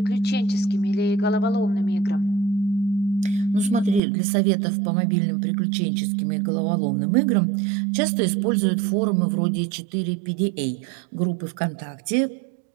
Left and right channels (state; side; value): drops out; left; at 4.0 s